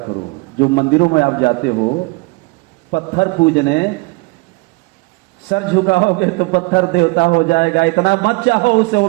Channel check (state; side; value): quieter; left; 26.3 dB